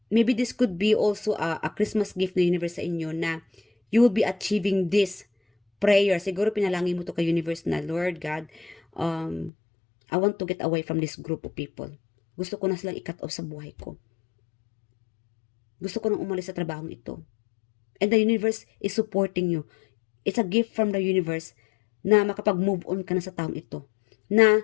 Maybe this could be also a Christmas gift ng universe sa inyo, na you will be achieving this prayer. Siguro pinalangin mo to kay universe na, Lord God, I want to get away from this group of people. Gusto ko na silang i-cut off sa buhay ko. Gusto ko nang umalis sa trabahong ito. And the universe is supporting you. It's a gift from the universe na makapag-move on ka na sa taong ito. Na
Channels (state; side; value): drops out; right; at 9.5 s